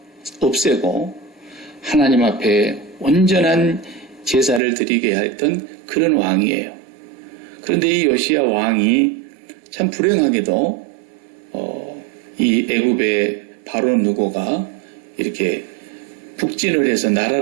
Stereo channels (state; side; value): drops out; left; at 4.6 s